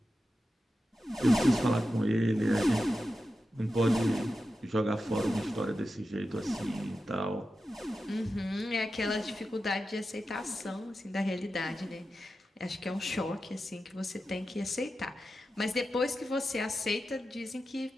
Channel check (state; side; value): normal; both; correlation 0.91